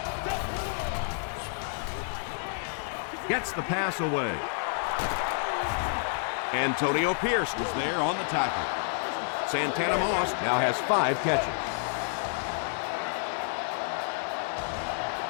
Gets the pass away. Antonio Pierce was there on the tackle. Santana Moss now has 5 catches.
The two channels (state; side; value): silent; right; digital silence